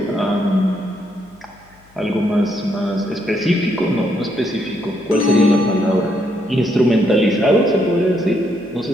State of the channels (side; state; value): left; noise; hum, 29 dB below the sound